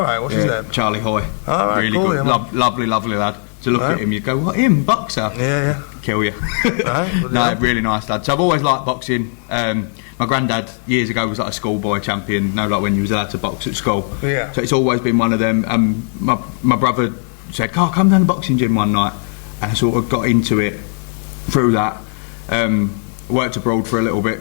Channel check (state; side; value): silent; right; 55 dB below the other